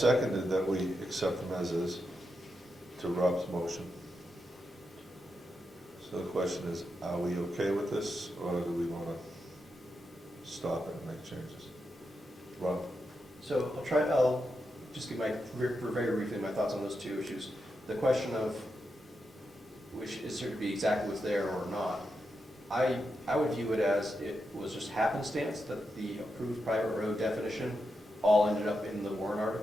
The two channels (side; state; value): both; normal; correlation 0.86